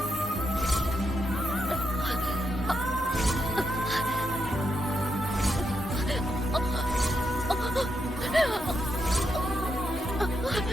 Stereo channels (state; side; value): normal; both; correlation 0.82